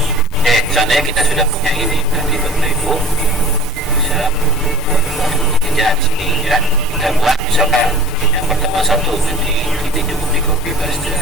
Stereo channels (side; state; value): both; normal; correlation 0.42